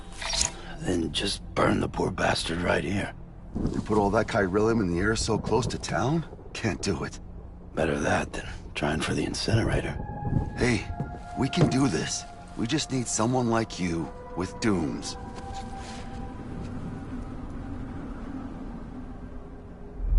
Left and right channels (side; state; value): both; identical; correlation 1.00